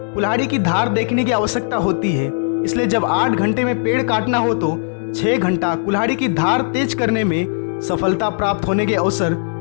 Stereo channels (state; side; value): silent; right; digital silence